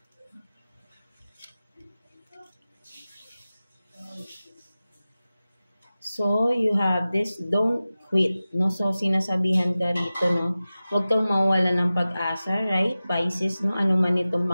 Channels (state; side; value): inverted; both; correlation -0.96